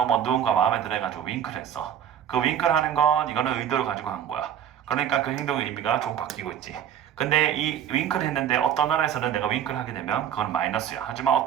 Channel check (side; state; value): left; quieter; 9.7 dB